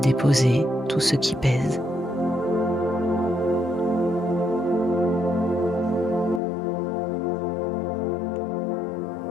tout ce qui pèse.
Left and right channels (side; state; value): right; drops out; at 6.4 s